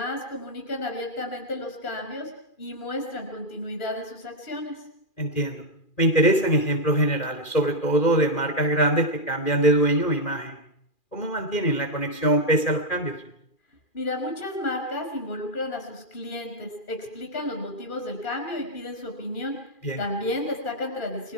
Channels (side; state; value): right; late; 2.4 ms